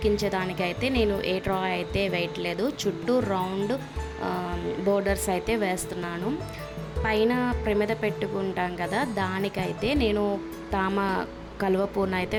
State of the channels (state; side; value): identical; both; correlation 1.00